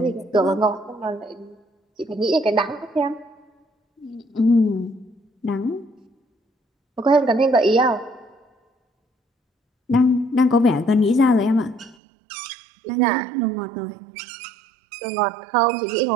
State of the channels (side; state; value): left; drops out; at 12.0 s